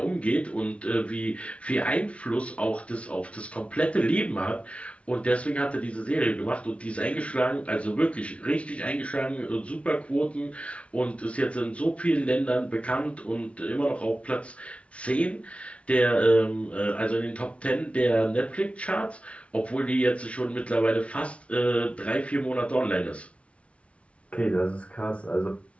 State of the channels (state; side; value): late; right; 0.062 ms